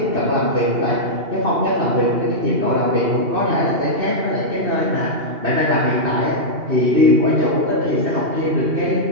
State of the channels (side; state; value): left; late; 2.8 ms